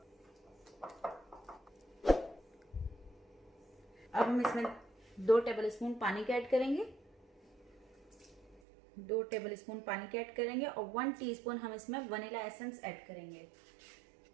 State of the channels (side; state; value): left; drops out; at 8.6 s